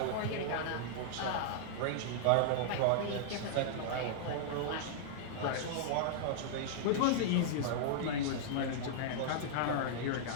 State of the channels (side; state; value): both; different; correlation -0.01